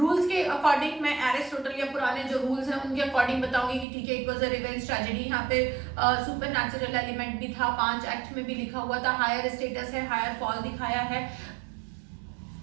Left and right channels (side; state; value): left; drops out; at 3.9 s